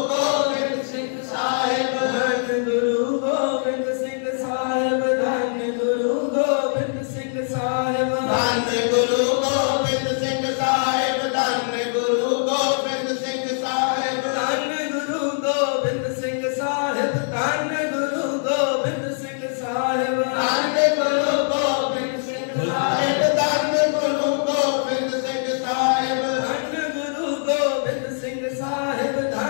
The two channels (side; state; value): right; silent; 64 dB below the other